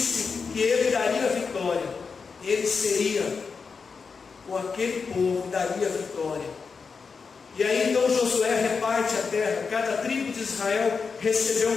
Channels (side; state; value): right; quieter; 5.2 dB